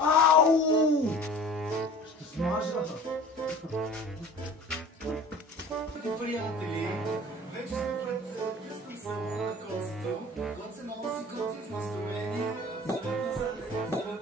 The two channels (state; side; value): normal; both; correlation 0.43